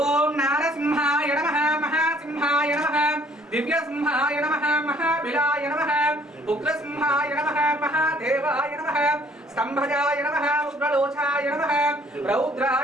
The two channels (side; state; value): both; normal; correlation 0.59